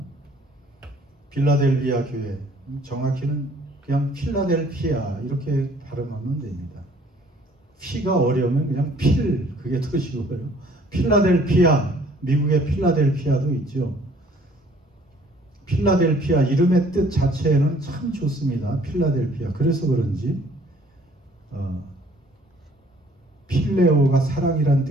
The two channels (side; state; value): both; normal; correlation 0.58